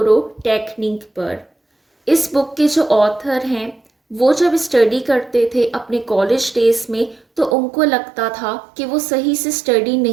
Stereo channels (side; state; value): left; drops out; at 7.6 s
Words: टेक्निक पर। इस बुक के जो ऑथर हैं वो जब स्टडी करते थे अपने कॉलेज डेज में तो उनको लगता था कि वो सही से स्टडी